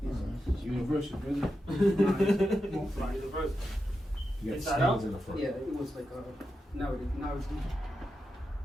It's universal, brother. won't fly. Universal. You got Inside stains out? in the front. Yeah, it was like, now it's,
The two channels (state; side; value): normal; both; correlation 0.88